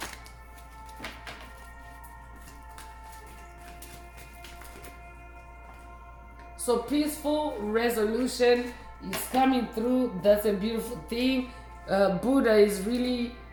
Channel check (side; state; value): both; identical; correlation 1.00